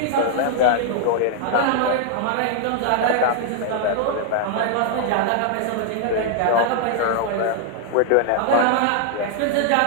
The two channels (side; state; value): both; different; correlation 0.00